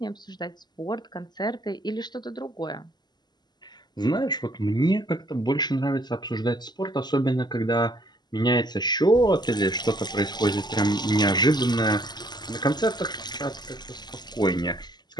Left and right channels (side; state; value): right; late; 0.21 ms